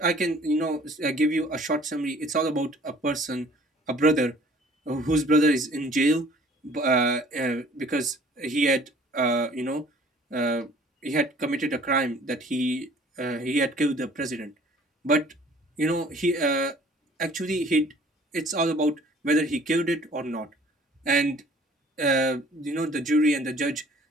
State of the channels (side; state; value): both; normal; correlation 0.53